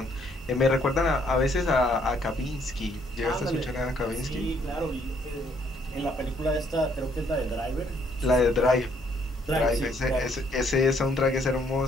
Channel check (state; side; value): normal; both; correlation 0.67